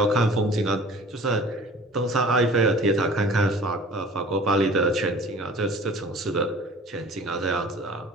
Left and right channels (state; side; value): normal; both; correlation 0.45